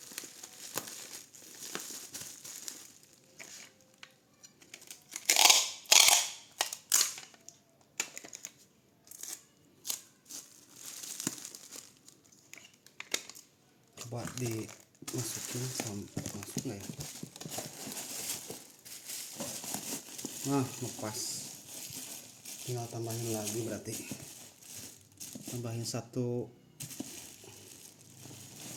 Coba dimasukin masuk nggak ya? Nah, lepas. Tinggal tambahin lagi, berarti tambahin satu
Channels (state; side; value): identical; both; correlation 1.00